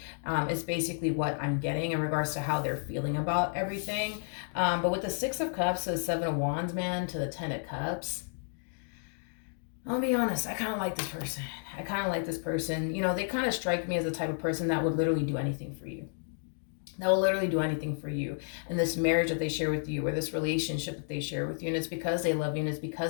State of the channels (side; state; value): right; silent; digital silence